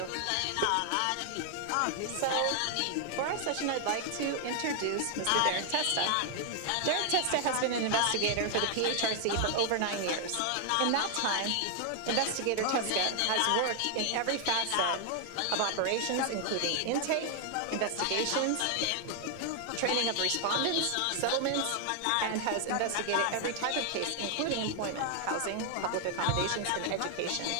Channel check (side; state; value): both; different; correlation 0.00